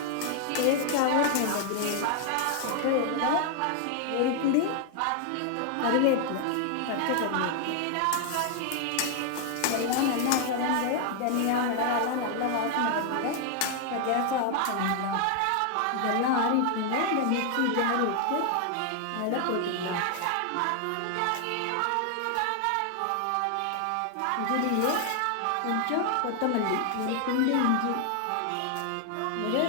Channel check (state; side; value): different; both; correlation 0.00